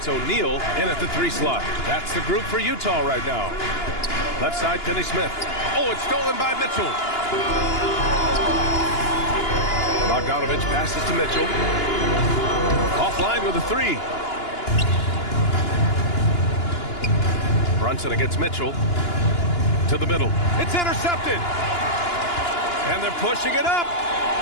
O'Neal in at the 3 slot. That's the group for Utah right now. Left side, Finney-Smith. Oh, it's stolen by Mitchell. Bogdanovic passes to Mitchell. Offline with a 3. Brunson against Mitchell. To the middle. It's intercepted. And they're pushing it up.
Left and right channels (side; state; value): right; late; 2.9 ms